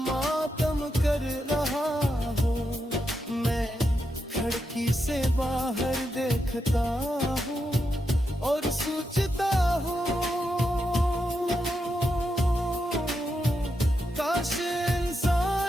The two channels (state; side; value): normal; both; correlation 0.85